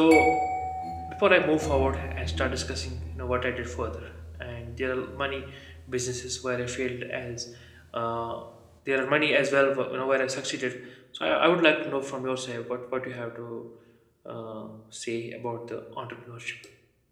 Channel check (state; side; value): identical; both; correlation 1.00